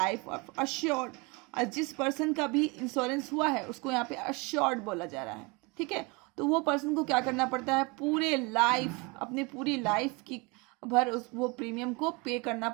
of assured. और जिस पर्सन का भी इंश्योरेंस हुआ है उसको यहाँ पे अश्योर्ड बोला जा रहा है. ठीक है, तो वो पर्सन को क्या करना पड़ता है, पूरे लाइफ, अपनी पूरी लाइफ की भर वो प्रीमियम को पे करना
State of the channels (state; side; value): quieter; left; 28.0 dB